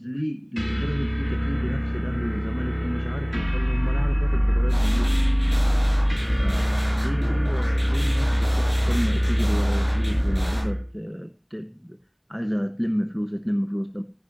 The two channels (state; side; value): identical; both; correlation 1.00